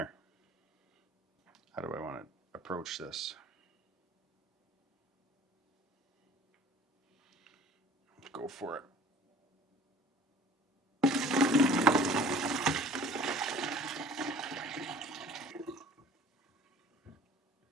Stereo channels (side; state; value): both; normal; correlation 0.48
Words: How do I want to approach this? Go for it.